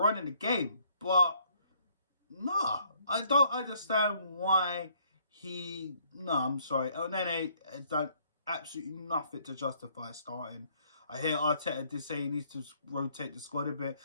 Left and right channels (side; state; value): both; inverted; correlation -0.65